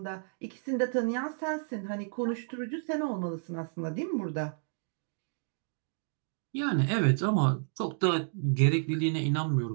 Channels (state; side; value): silent; left; digital silence